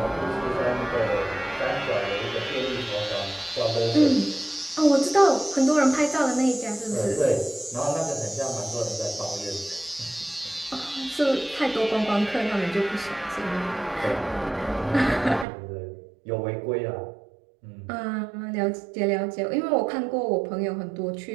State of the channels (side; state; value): left; drops out; at 15.5 s